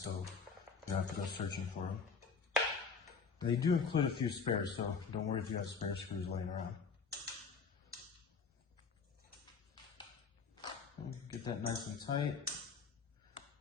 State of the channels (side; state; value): right; quieter; 5.3 dB